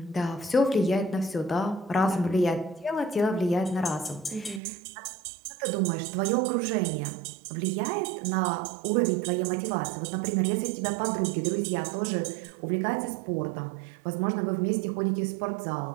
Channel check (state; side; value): drops out; left; at 4.6 s